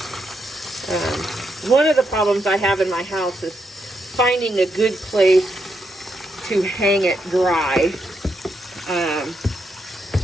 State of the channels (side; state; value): both; normal; correlation 0.81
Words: One of the problems I have in my house is finding a good place to hang it dry.